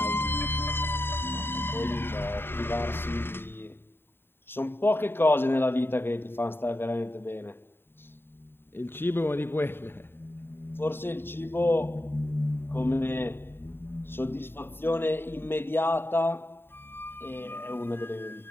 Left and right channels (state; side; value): late; right; 0.11 ms